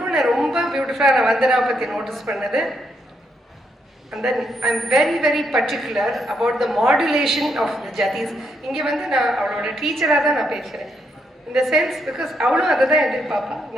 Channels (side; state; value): both; normal; correlation 0.77